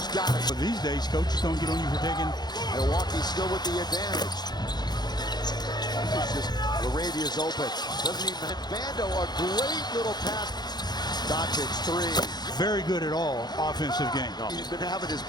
got it. But these days, coaches don't get on you for taking. Milwaukee's still with the advantage. Moravia's open. Doesn't even. Vando, a great little pass. Doncic 3. Very good at all offensive game. No. He's been having his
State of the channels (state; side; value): late; right; 0.20 ms